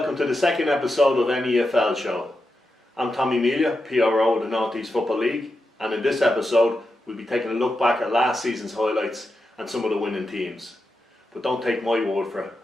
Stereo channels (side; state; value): both; normal; correlation 0.88